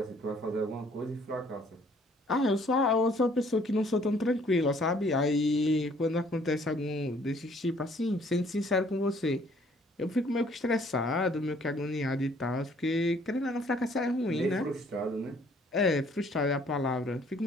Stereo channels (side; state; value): both; normal; correlation 0.60